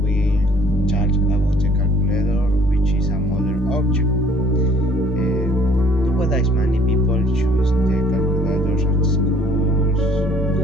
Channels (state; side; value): normal; both; correlation 0.58